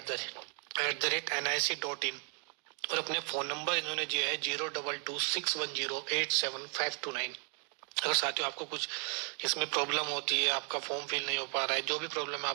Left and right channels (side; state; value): left; quieter; 39.9 dB